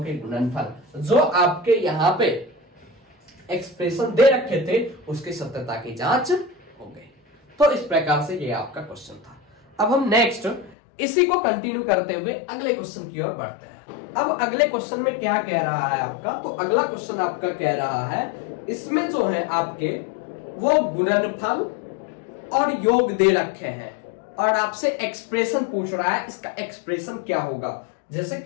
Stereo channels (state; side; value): drops out; right; at 10.8 s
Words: के गुणनफल जो आपके यहाँ पे एक्सप्रेशन दे रखे थे उसकी सत्यता की जांच हो गई। तो इस प्रकार से ये आपका क्वेश्चन था। अब हम नेक्स्ट इसी को कंटिन्यू करते हुए अगले क्वेश्चन की ओर बढ़ते हैं। अब अगले क्वेश्चन में क्या कह रहा है आपका, तो अगला क्वेश्चन आपका कह रहा है इसमें जो है आपके वो गुणनफल और योग दे रखे हैं और आपसे एक्सप्रेशन पूछ रहा है, इसका एक्सप्रेशन क्या होगा। जैसे